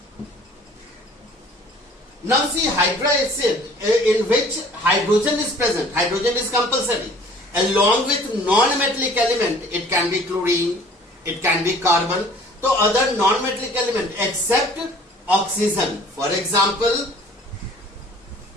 Now see, hydroacid in which hydrogen is present, hydrogen is compulsory. Along with non-metallic element, it can be chlorine, it can be carbon, so other non-metallic element except oxygen. For example,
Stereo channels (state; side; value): normal; both; correlation 0.52